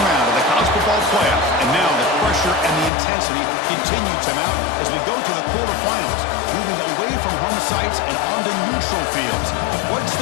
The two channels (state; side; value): drops out; right; at 2.9 s